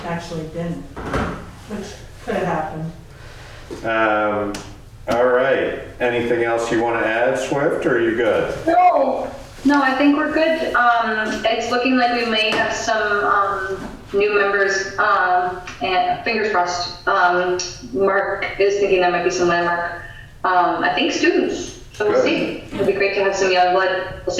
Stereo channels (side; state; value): both; identical; correlation 1.00